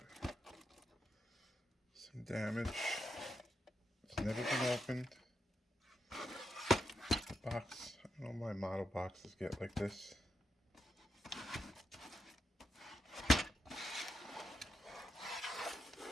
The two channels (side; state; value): both; normal; correlation 0.84